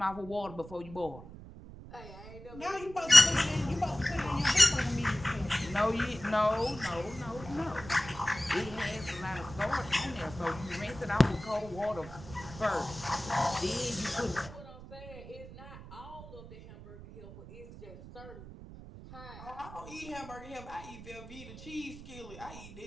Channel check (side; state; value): right; noise; rumble, 15 dB below the sound